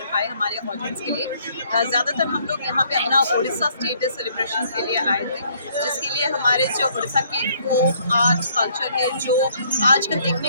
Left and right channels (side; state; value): both; inverted; correlation -0.65